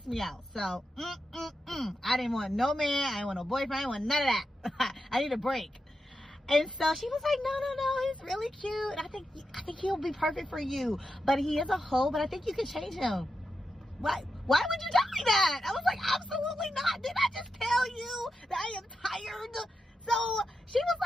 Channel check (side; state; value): both; normal; correlation 0.88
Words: me out. So I didn't want no man, I didn't want no boyfriend, I didn't want none of that. I need a break. And so she was like, no, he's really cute. I think he'll be perfect for you, but he is a hoe, but I think you can change him. Why would you tell me that? I was like, absolutely not. Did I just tell you that I am tired? So she was